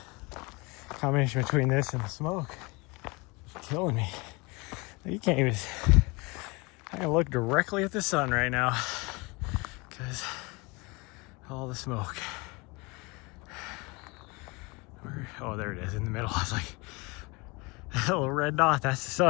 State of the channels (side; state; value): right; quieter; 26.8 dB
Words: Combination between this and the smoke is killing me. You can't even, I can look directly at the sun right now because all the smoke. Oh, there it is in the middle. I was like, that little red dot, that's the